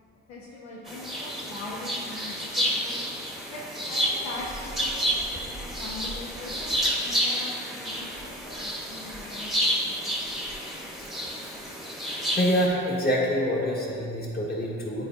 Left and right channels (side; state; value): both; normal; correlation 0.38